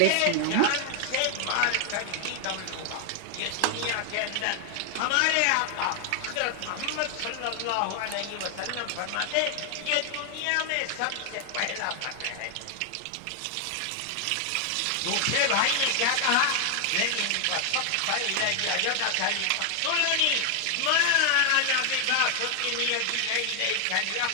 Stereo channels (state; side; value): different; both; correlation 0.00